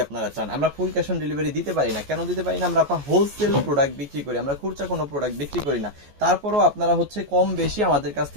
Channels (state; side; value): late; left; 14 ms